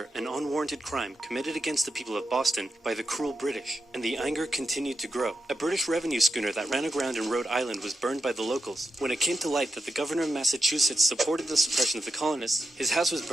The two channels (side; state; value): both; normal; correlation 0.85